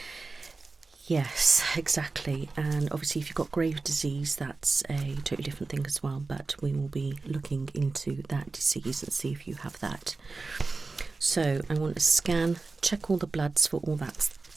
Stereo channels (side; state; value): left; quieter; 3.8 dB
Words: Yes, exactly. And obviously, if you've got Graves' disease, that's a totally different thing as well. But we will be looking into that disease and see if you have that. So I want to scan, check all the bloods for all that